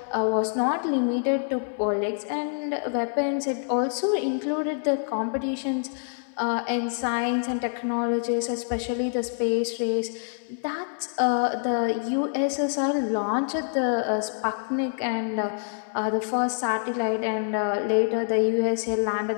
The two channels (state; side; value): silent; right; digital silence